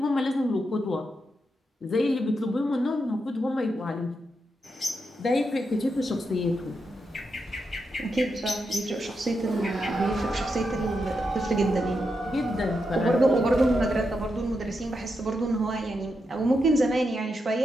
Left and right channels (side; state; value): both; normal; correlation 0.85